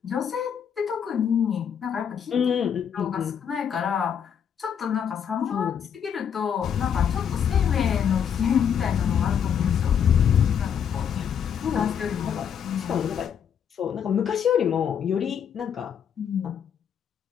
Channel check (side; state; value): right; quieter; 8.1 dB